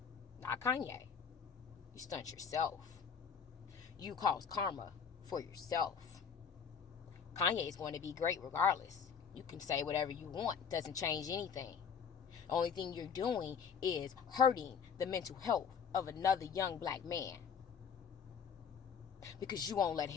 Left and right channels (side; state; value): right; quieter; 6.8 dB